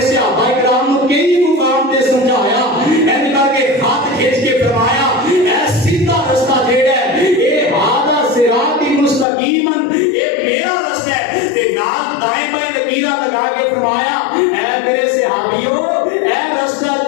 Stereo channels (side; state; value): right; drops out; at 9.2 s